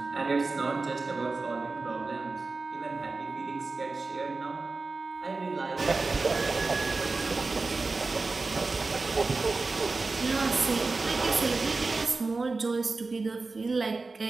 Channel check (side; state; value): left; quieter; 3.8 dB